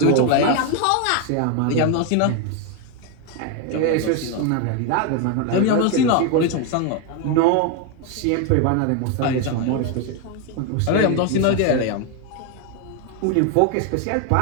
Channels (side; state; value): both; different; correlation 0.01